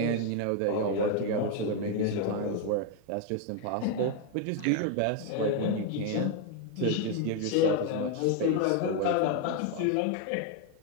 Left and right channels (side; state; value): both; different; correlation 0.01